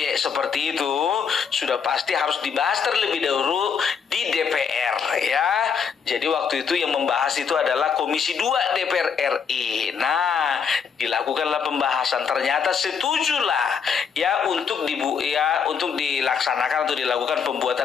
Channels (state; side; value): quieter; right; 6.6 dB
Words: seperti itu, sudah pasti harus dibahas terlebih dahulu di DPR ya. Jadi waktu itu yang membahas itu adalah Komisi 2 DPR RI. Nah, dilakukanlah pembahasan, ternyata setujulah ya untuk dilaksanakan atau dilakukan